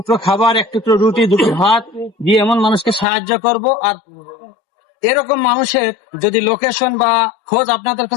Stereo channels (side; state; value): right; drops out; at 3.1 s